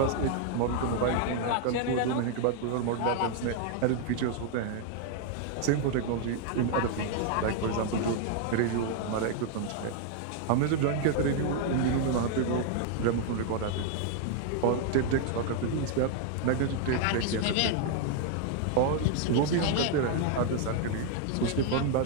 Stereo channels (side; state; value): both; different; correlation 0.00